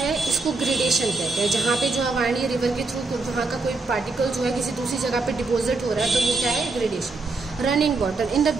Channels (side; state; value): left; quieter; 3.7 dB